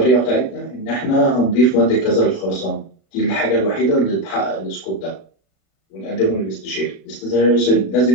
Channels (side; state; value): right; late; 36 ms